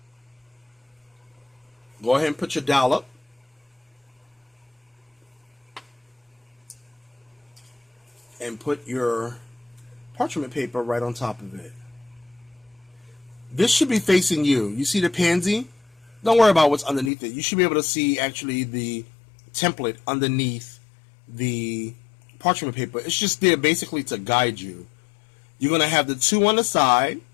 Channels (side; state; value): right; drops out; at 17.1 s